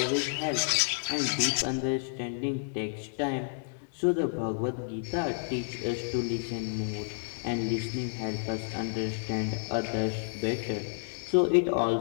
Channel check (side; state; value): right; silent; digital silence